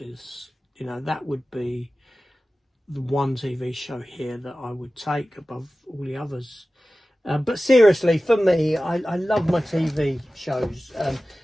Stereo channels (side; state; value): both; normal; correlation 0.96